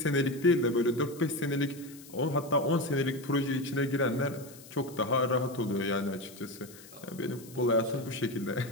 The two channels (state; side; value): noise; left; hiss, 20 dB below the sound